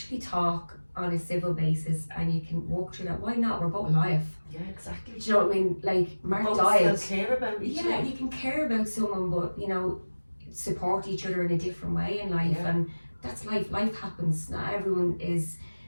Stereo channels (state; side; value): inverted; both; correlation -1.00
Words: talk on a civil basis and you can walk through that, why not? We're both alive. Yeah, exactly. Do you know what I mean? Like, Mark both died. still care about each other. Yeah, you can care about someone, but, you know, support each other in a different way in life, and that's life. Life happens. Not everyone is